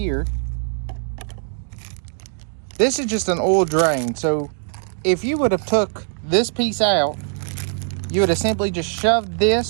this is just an oil drain. So if you would have took this piece out, you would have simply just shoved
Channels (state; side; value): silent; left; digital silence